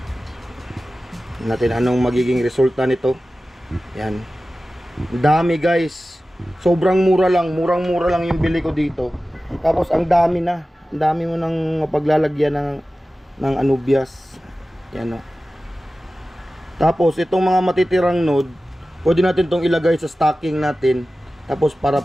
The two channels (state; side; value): normal; both; correlation 0.95